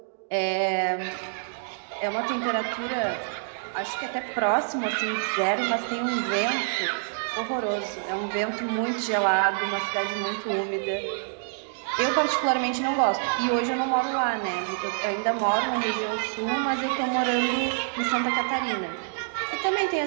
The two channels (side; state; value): left; silent; digital silence